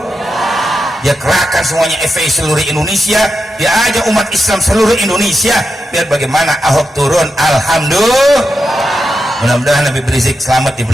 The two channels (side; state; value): both; normal; correlation 0.88